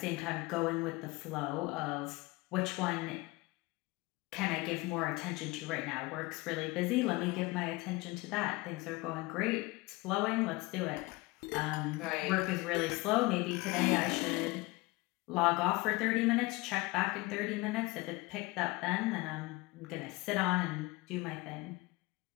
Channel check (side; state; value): right; quieter; 23.1 dB